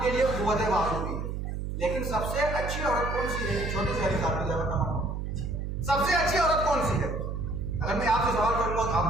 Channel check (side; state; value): right; noise; hum, 4 dB below the sound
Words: کے لیے قوت بازو بھی ہے, لیکن سب سے اچھی عورت کون سی ہے؟ چھوٹی سی حدیث آپ کی جواب تمام, سب سے اچھی عورت کون سی ہے؟ اگر میں آپ سے سوال کروں گا تو آپ